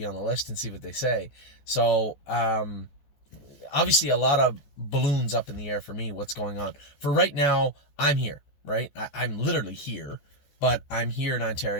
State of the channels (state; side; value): late; right; 14 ms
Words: on the list and see what they say. So, obviously a lot of balloons up in the air for me, what's going on. For right now, I'm here, right? I'm literally here, but I'm here in